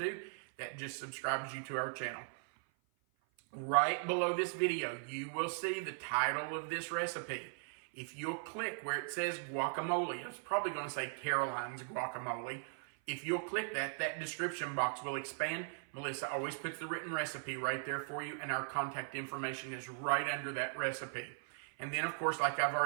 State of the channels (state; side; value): silent; left; 52 dB below the other